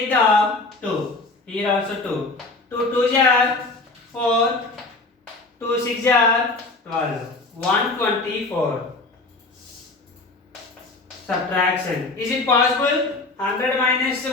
the 2. Here also 2. 2 2s are 4. 2 6 are 12. 124. Subtraction. Is it possible? 100 minus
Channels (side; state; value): right; quieter; 3.3 dB